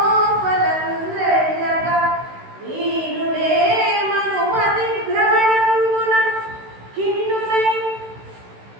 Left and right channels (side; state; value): left; late; 16 ms